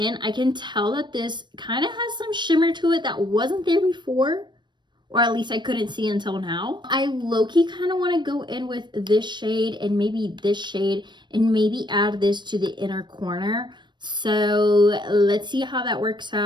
I can tell that this kind of has some shimmer to it that wasn't there before, or at least I couldn't see until now. I low-key kind of want to go in with this shade and maybe this shade and maybe add this to the inner corner. So let's see how that works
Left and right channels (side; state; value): left; late; 0.22 ms